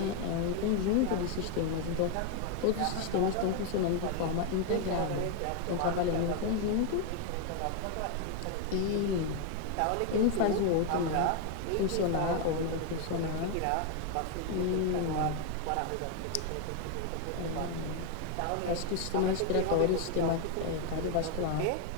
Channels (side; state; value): both; different; correlation 0.01